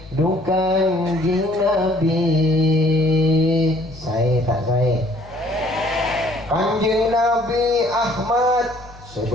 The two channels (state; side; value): noise; left; hum, 20 dB below the sound